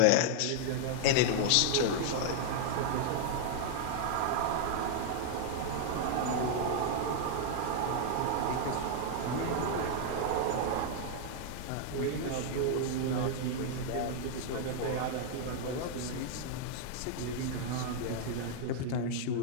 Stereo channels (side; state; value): both; different; correlation -0.01